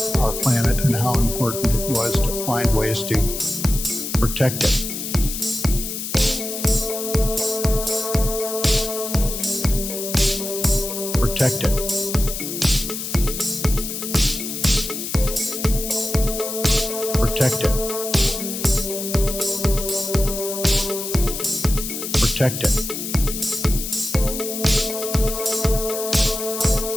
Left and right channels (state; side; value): noise; left; hiss, 6 dB below the sound